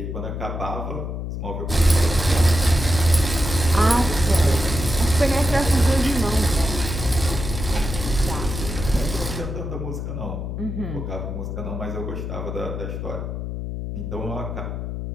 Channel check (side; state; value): left; noise; hum, 5 dB below the sound